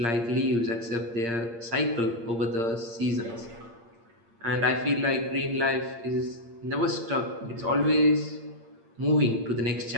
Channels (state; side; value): late; left; 8.6 ms